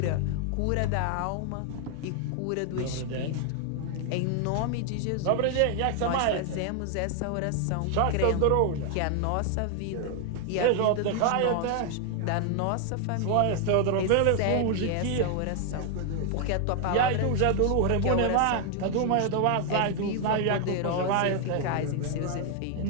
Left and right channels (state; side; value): different; both; correlation 0.00